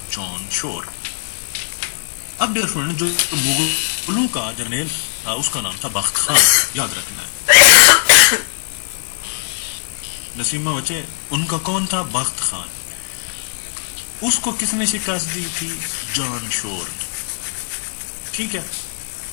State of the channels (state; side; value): silent; right; 67 dB below the other